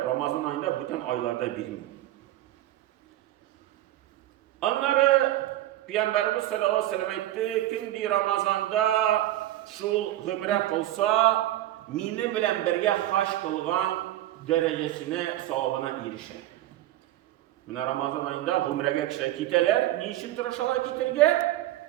ayında bütün aylarda bilmiyor. Onları Peygamberimiz sallallahu aleyhi ve sellem aytdı, kim Ramazanda şu gümre kılsa, mini bilen birge haş kılgan derecesine, savabına erişer. Mine Ramazan ayında gümrege kişiler kiteler, niçin tırışalar kitirge?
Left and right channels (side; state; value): left; quieter; 14.4 dB